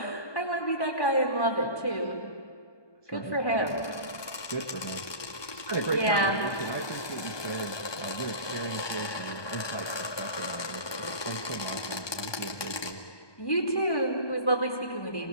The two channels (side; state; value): right; late; 1.2 ms